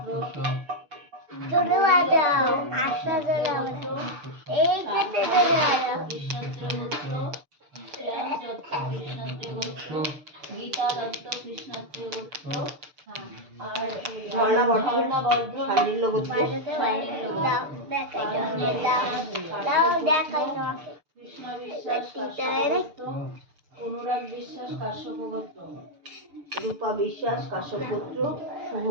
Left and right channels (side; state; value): left; late; 6.8 ms